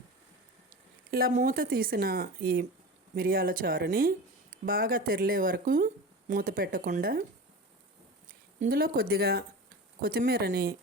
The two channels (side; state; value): both; normal; correlation 0.30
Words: ఇలా మూత తీసిన ఈ మిరియాల చారుని బాగా తెరిలే వరకు మూత పెట్టకుండా ఇందులో కొద్దిగా కొత్తిమీరని